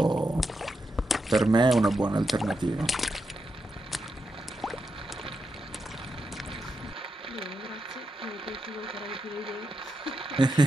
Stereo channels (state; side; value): normal; both; correlation 0.85